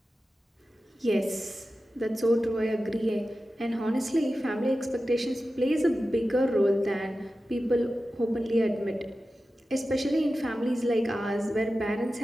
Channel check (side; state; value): both; normal; correlation 0.93